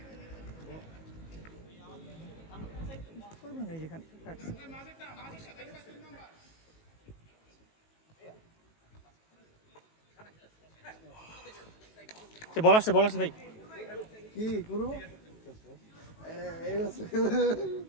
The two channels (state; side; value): late; right; 18 ms